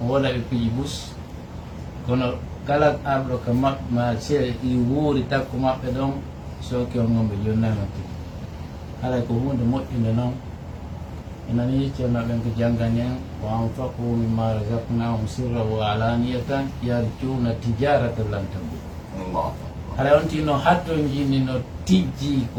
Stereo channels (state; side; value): identical; both; correlation 1.00